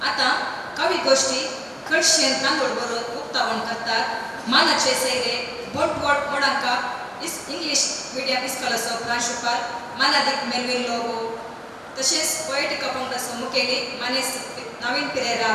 आता कवी गोष्टी कडशेन तांदूळ बरोवन उक्तावण करतात. मानाचे सैरे बंटवळ कोडांका इंग्लीश मिडियम इस्कॉलाचो प्रांशुपाल मानादीक मेल्विन लोगो तशेंच पोएटिका पंगडाचो मुखेली मानेस नवीन पेरेरा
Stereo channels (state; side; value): identical; both; correlation 1.00